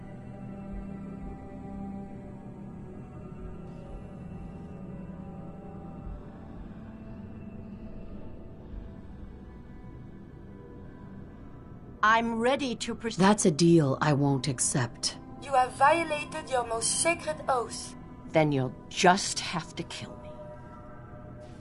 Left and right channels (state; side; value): identical; both; correlation 1.00